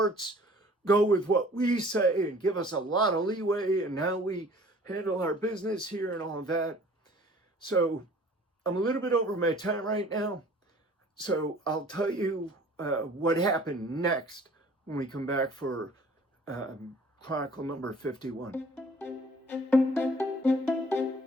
go with what we say and give us a lot of leeway in how we handle our business here and all of that. So I'm a little bit over my time right now. So I'll tell you what happened next when we come back for Chronicle number 51.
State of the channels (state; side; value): normal; both; correlation 0.51